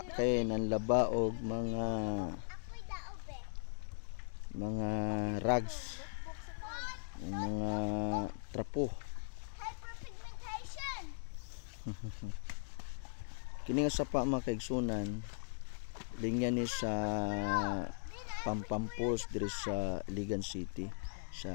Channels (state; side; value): silent; right; digital silence